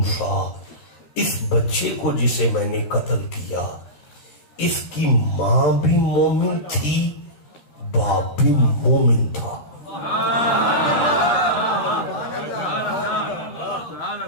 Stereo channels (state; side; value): late; right; 13 ms